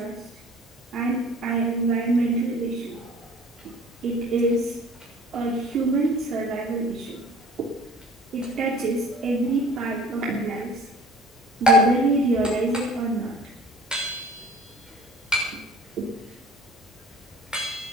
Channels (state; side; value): normal; both; correlation 0.47